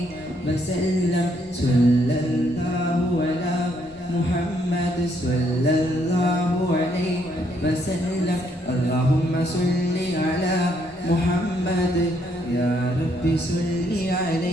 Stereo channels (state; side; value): normal; both; correlation 0.72